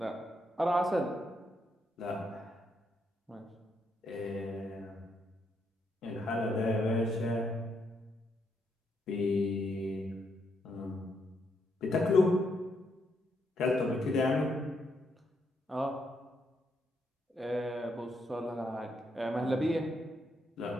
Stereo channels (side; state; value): both; normal; correlation 0.77